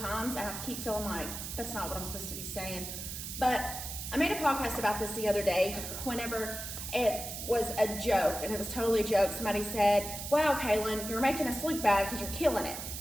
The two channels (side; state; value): right; noise; hiss, 7 dB below the sound